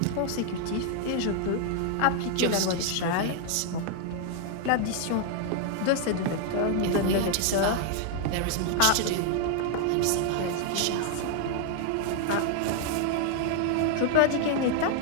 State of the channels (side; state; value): both; different; correlation 0.00